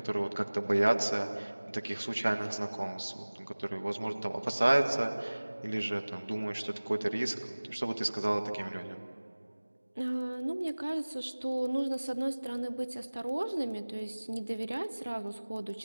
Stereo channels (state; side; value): inverted; both; correlation -1.00